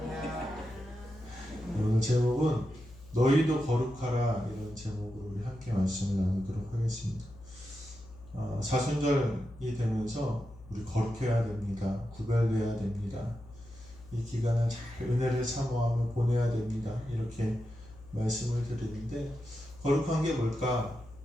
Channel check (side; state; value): left; noise; hum, 19 dB below the sound